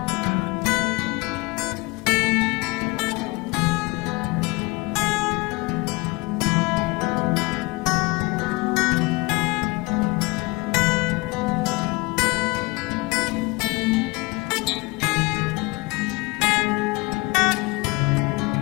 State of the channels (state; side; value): quieter; right; 25.2 dB